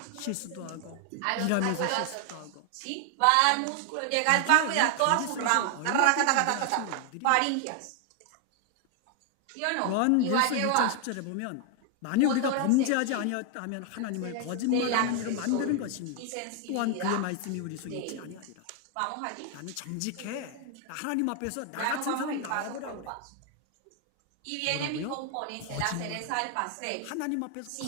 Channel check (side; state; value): both; different; correlation 0.00